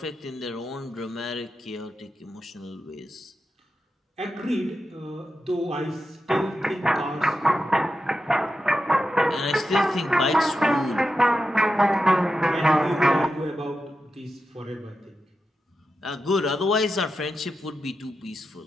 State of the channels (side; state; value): both; normal; correlation 0.89